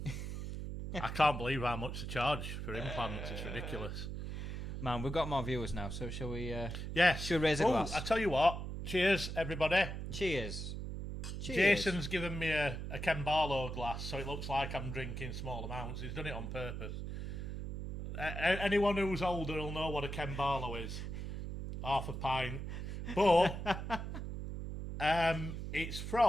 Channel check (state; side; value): noise; right; hum, 5 dB below the sound